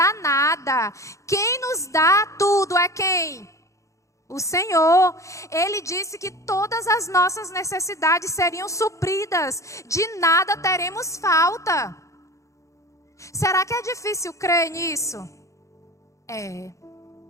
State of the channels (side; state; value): right; late; 0.15 ms